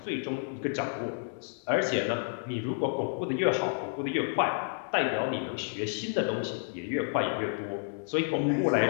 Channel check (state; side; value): silent; right; digital silence